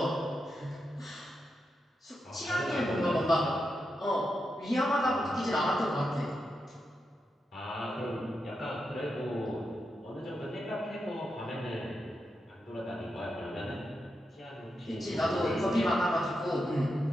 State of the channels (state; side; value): normal; both; correlation 0.86